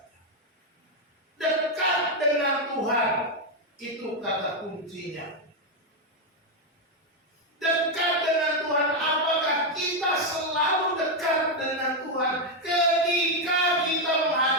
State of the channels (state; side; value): normal; both; correlation 0.03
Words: Dekat dengan Tuhan, itu kata kuncinya. Dekat dengan Tuhan, apakah kita selalu dekat dengan Tuhan ketika kita